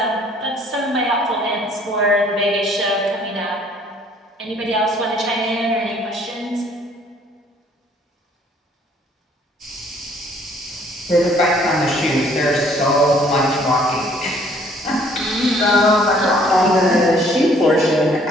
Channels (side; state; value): both; normal; correlation 0.60